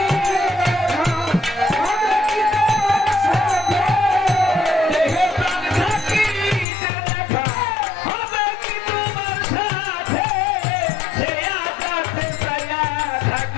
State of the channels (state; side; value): drops out; right; at 6.7 s